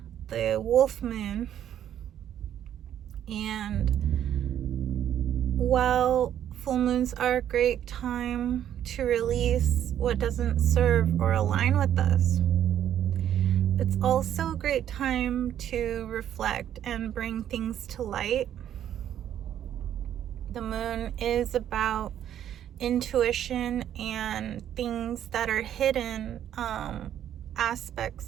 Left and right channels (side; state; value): left; quieter; 10.5 dB